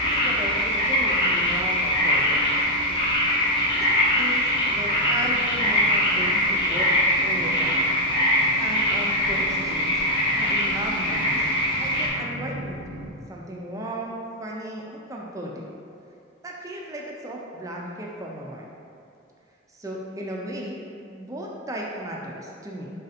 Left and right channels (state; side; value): normal; both; correlation -0.01